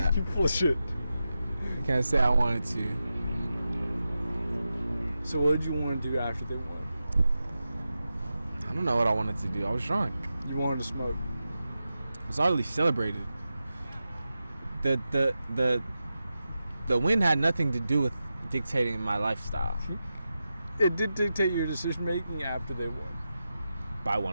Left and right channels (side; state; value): both; inverted; correlation -0.91